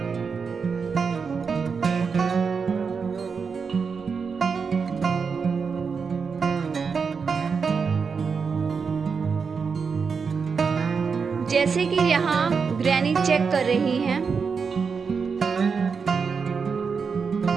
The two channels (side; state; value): left; quieter; 5.6 dB